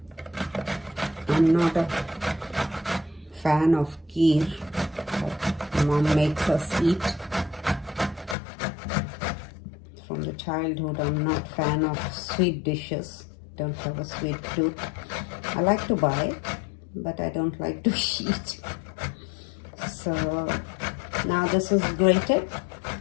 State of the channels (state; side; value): drops out; right; at 8.3 s